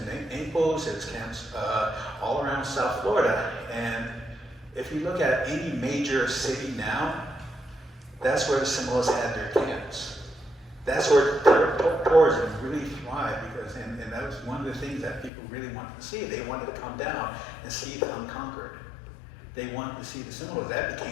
Naples, there's camps all around South Florida. And if you look at any major city now, that's where the Seminoles had their camps. That's where tourism really thrived, because, and that was one of the things that people really wanted to see. They wanted to come down and see the unconquered. They wanted to see the Seminoles. That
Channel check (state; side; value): drops out; right; at 15.3 s